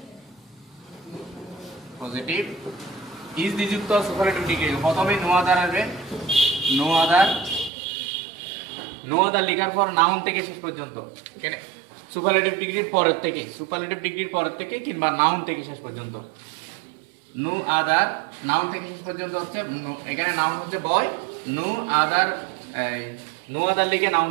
পজিটিভ ইজ দি যুক্ত সুপারলেটিভ ডিগ্রি প্রথমে নো আদার আসবে। নো আদার লেখার পর নাউন থেকে শেষ পর্যন্ত, এখানে সুপারলেটিভ ডিগ্রির পরের থেকে কিংবা নাউন থেকে শেষ পর্যন্ত। নো আদার নাউন থেকে শেষ পর্যন্ত হচ্ছে, এখানে নাউন হচ্ছে বয়, নো আদার লিখে নাউন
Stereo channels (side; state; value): left; drops out; at 7.7 s